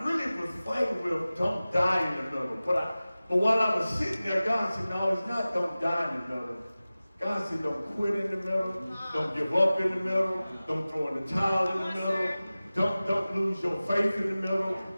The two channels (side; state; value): both; inverted; correlation -0.97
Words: really was fighting with don't die in the middle. But while I was sitting there, God said, no, it's not don't die in the middle. God said, don't quit in the middle. Don't give up in the middle. Don't throw in the towel in the middle. Don't lose your faith in the middle.